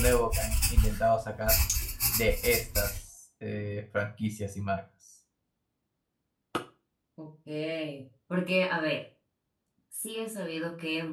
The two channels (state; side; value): identical; both; correlation 1.00